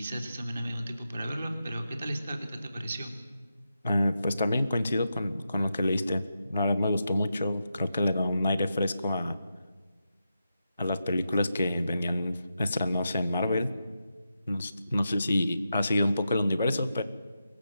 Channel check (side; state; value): both; inverted; correlation -0.87